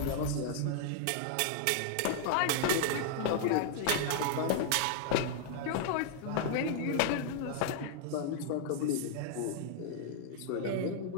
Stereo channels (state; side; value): different; both; correlation -0.01